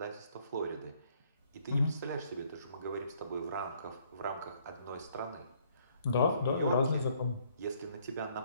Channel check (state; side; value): inverted; both; correlation -0.65